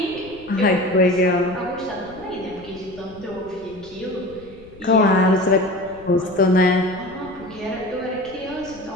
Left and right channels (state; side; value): noise; left; rumble, 22 dB below the sound